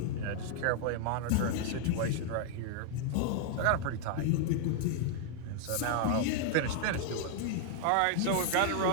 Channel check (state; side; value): different; both; correlation 0.00